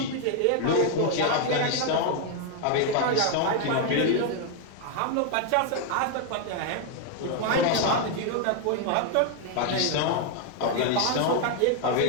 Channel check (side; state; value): both; different; correlation 0.01